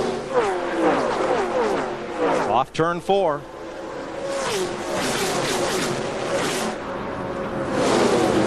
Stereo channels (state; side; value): identical; both; correlation 1.00